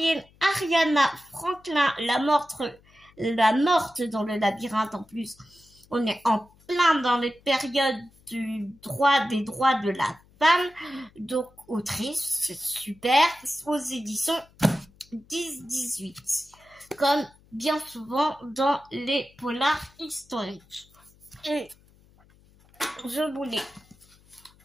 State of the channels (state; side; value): noise; left; hum, 29 dB below the sound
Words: Ariana Franklin, la morte dans le labyrinthe. En plus, on est en plein dans les périodes des droits de la femme. Donc, autrice, c'est super, aux éditions 10-18. Comme bien souvent dans les polars historiques. Et je voulais